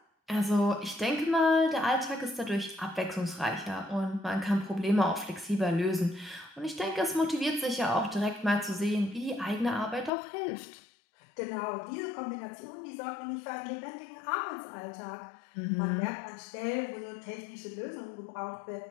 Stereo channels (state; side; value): drops out; right; at 10.1 s